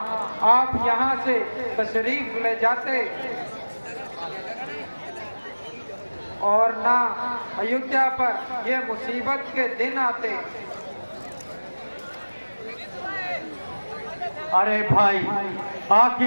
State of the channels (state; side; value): inverted; both; correlation -1.00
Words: आप यहाँ से तशरीफ ले जाते और ना अयोध्या पर ये मुसीबत के दिन आते। अरे भाई